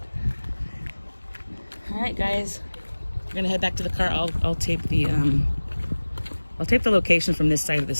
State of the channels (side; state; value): both; inverted; correlation -1.00